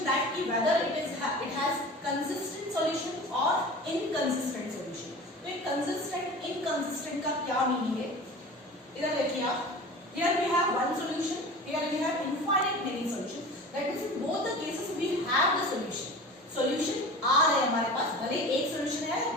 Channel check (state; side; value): normal; both; correlation 0.36